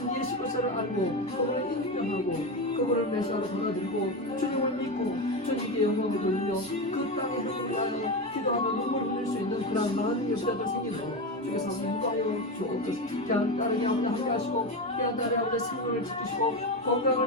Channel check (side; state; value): both; normal; correlation 0.17